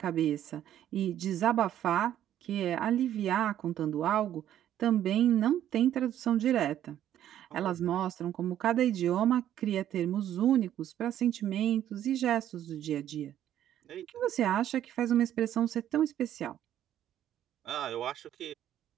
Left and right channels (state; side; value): quieter; left; 11.3 dB